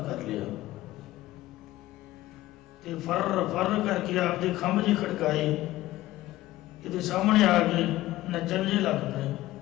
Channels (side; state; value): right; quieter; 16.3 dB